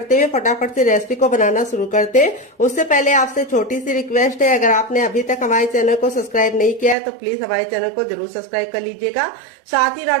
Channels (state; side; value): drops out; left; at 7.0 s